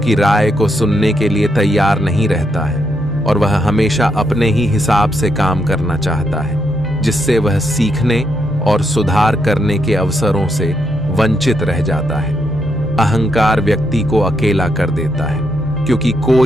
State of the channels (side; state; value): both; normal; correlation 0.79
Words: राय को सुनने के लिए तैयार नहीं रहता है और वह हमेशा अपने ही हिसाब से काम करना चाहता है, जिससे वह सीखने और सुधार करने के अवसरों से वंचित रह जाता है। अहंकार व्यक्ति को अकेला कर देता है क्योंकि